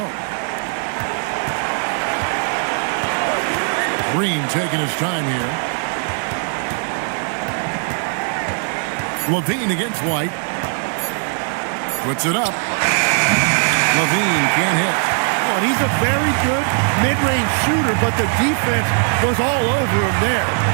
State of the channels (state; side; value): silent; left; 56 dB below the other